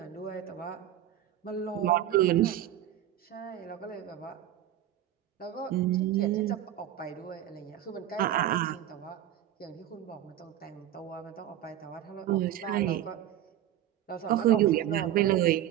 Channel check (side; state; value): left; quieter; 12.0 dB